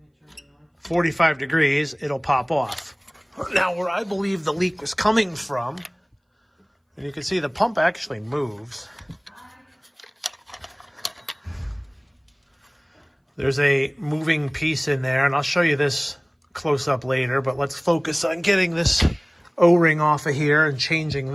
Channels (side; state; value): both; identical; correlation 1.00